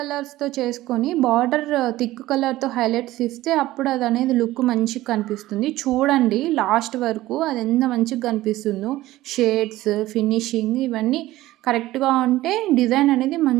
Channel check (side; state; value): left; quieter; 16.4 dB